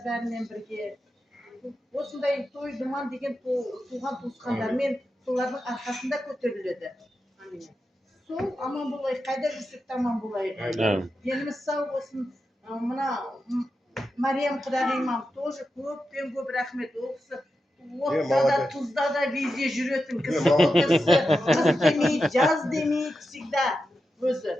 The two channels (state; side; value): normal; both; correlation 0.89